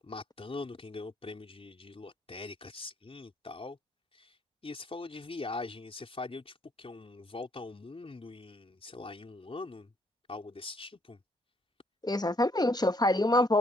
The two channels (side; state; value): both; normal; correlation 0.68